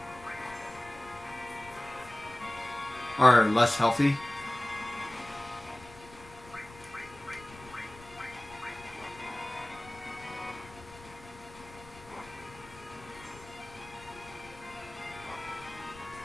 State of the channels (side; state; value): left; noise; rumble, 19 dB below the sound